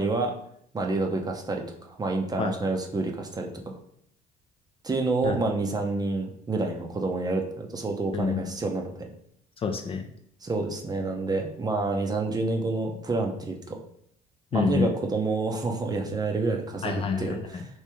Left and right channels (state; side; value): normal; both; correlation 0.66